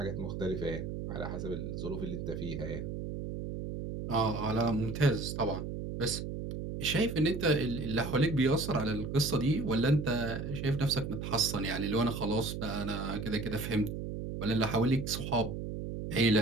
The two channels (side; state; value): right; noise; hum, 5 dB below the sound